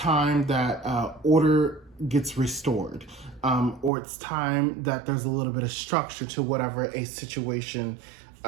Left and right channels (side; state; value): left; drops out; at 3.9 s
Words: that order gets restored. Or it's time that there's a little bit of structure to whatever a situation